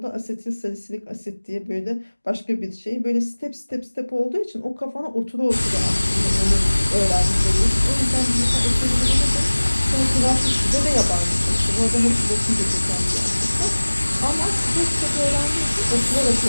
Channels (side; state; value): both; inverted; correlation -1.00